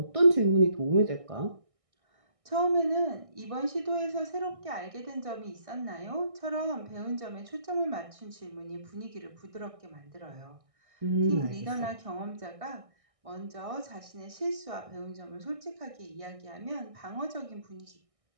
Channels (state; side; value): late; left; 1.6 ms